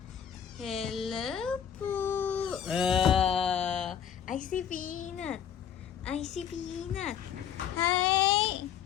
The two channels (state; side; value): quieter; right; 8.9 dB